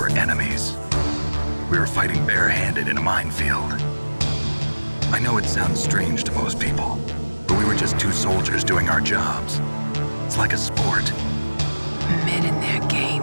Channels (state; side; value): inverted; both; correlation -1.00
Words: enemies. We were fighting barehanded in a minefield. I know it sounds strange to most people, but we were just two soldiers doing our jobs. It's like a sport. Men in their